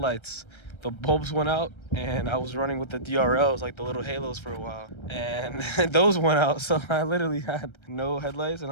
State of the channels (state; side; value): late; right; 1.3 ms